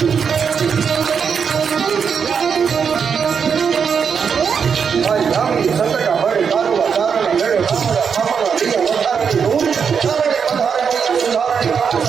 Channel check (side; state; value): left; quieter; 6.5 dB